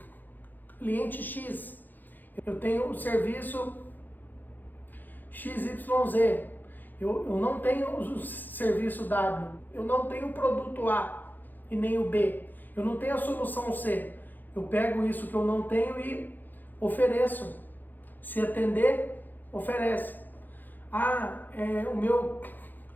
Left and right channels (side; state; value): right; late; 0.087 ms